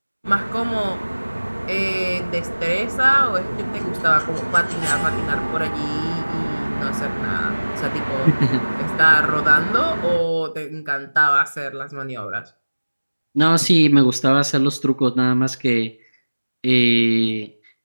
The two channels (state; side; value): inverted; both; correlation -1.00